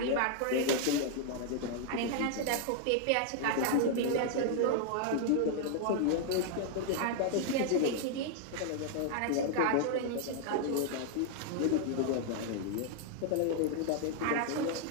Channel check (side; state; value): both; different; correlation 0.00